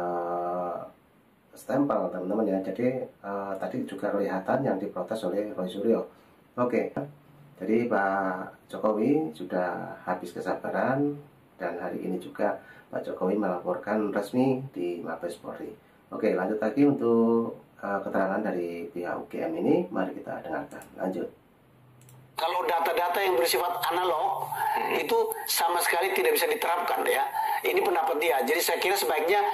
stempel, teman-teman ya. Jadi tadi juga kelihatan yang diprotes oleh Roy Suryo. Oke, jadi Pak Jokowi sudah habis kesabaran dan hari ini juga Pak Jokowi melaporkan resmi di Mabes Polri. Oke, lanjut lagi untuk keterangan dari pihak UGM ini, mari kita dengarkan. Lanjut. Kalau data-data yang bersifat analog itu sama sekali tidak bisa diterapkan ya. Ini pendapat dia. Jadi saya kira sebaiknya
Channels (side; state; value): both; identical; correlation 1.00